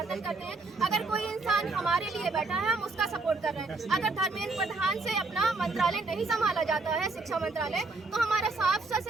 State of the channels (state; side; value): quieter; left; 3.6 dB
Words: करते हैं। अगर कोई इंसान हमारे लिए बैठा है हम उसका सपोर्ट कर रहे हैं। अगर धर्मेंद्र प्रधान से अपना मंत्रालय नहीं संभाला जाता है, शिक्षा मंत्रालय, तो हमारा साफ सा